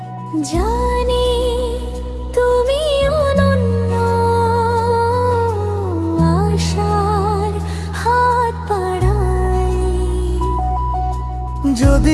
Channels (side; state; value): both; identical; correlation 1.00